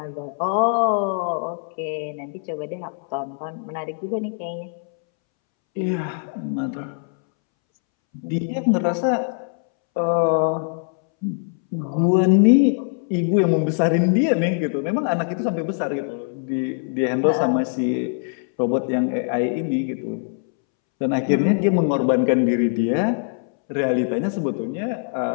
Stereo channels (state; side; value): silent; right; 64 dB below the other